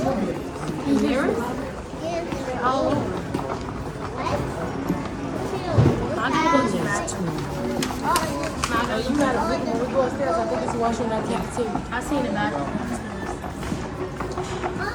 I seen it back. I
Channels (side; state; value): both; identical; correlation 1.00